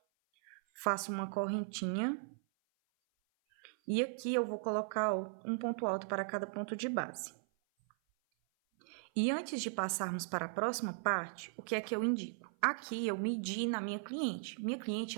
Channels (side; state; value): left; silent; 53 dB below the other